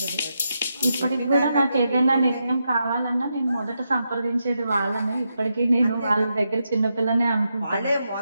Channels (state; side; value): inverted; both; correlation -0.84